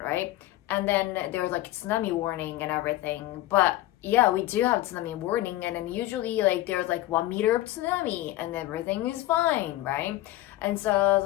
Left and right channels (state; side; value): quieter; right; 15.8 dB